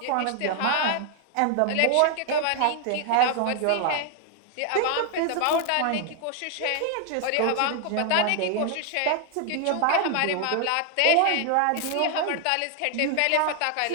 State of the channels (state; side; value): different; both; correlation 0.00